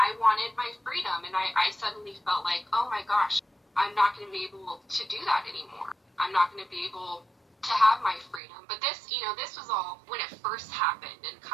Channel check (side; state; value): left; drops out; at 8.4 s